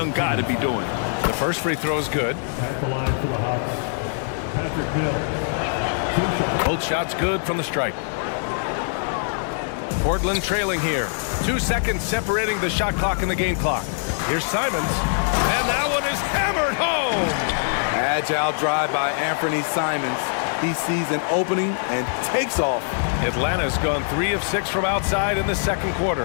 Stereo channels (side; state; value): right; silent; 63 dB below the other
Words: guy to be doing. The first free throw is good. At the line for the Hawks, Patrick Mill. Both shots good from the stripe. Portland trailing here. 2 seconds separating the shot clock and the game clock. Here's Simons. And that one is hammered home. Agile drive by Anthony Simons. He sees an opening and takes off. Atlanta's gone 3 of 6 from outside in the second